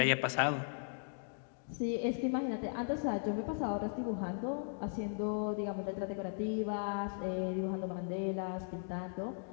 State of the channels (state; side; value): silent; right; digital silence